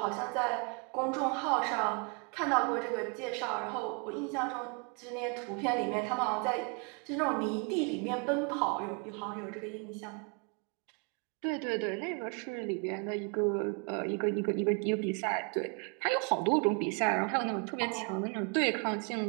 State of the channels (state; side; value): quieter; left; 36.1 dB